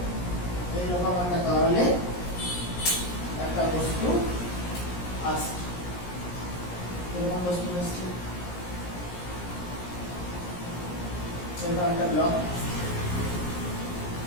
এইরকম একটা তরলে একটা বস্তু আসছে, এরকম বস্তু আসছে, এরকম একটা ব্লক।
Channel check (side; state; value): right; late; 17 ms